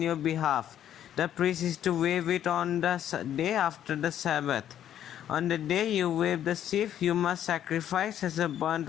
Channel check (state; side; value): quieter; right; 10.7 dB